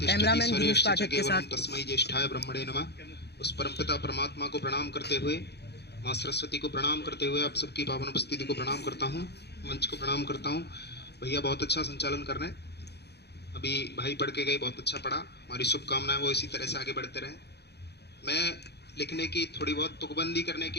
कैमरामैन गिरीश स्वरेश्च च पाठक के केवलम साथ तस्मै ज्येष्ठाय ब्रह्मणे नमः। उस परमपिता परमात्मा को प्रणाम करते हुए, माँ सरस्वती को प्रणाम करते हुए आप सबकी पावन उपस्थिति को प्रणाम करता हूँ, मंच को प्रणाम करता हूँ। भैया बहुत अच्छा संचालन कर रहे हैं, अभी भाई पढ़ के गए, बहुत अच्छा पढ़ा। हमारी शुभकामनाएं वो इसी तरह से आगे बढ़ते रहें। मैं लिखने की थोड़ी बहुत तुकबंदी करने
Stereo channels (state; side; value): late; right; 0.48 ms